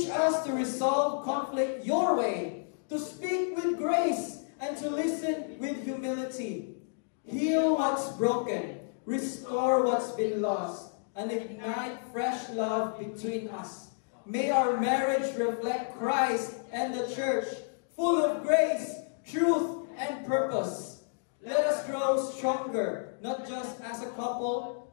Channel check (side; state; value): right; silent; digital silence